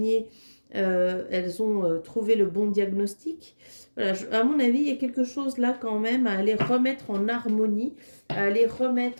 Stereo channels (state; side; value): inverted; both; correlation -1.00